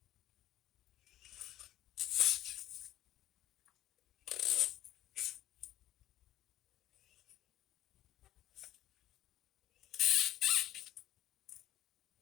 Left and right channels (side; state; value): right; quieter; 13.6 dB